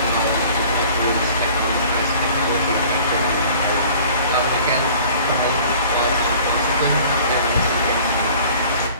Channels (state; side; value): inverted; both; correlation -0.49